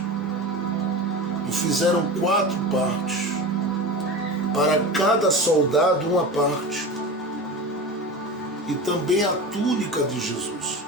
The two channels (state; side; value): normal; both; correlation 0.29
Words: e fizeram 4 partes, para cada soldado uma parte, e também a túnica de